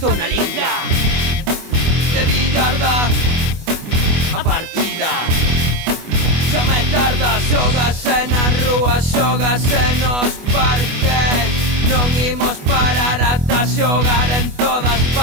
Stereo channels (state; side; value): late; left; 24 ms